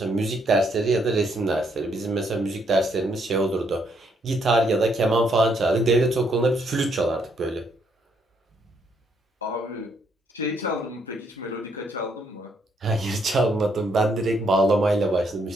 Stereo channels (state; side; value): normal; both; correlation 0.72